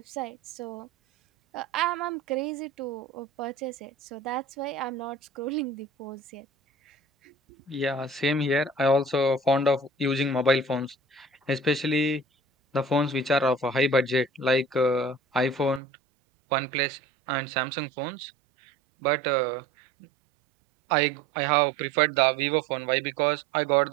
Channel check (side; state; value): left; drops out; at 15.8 s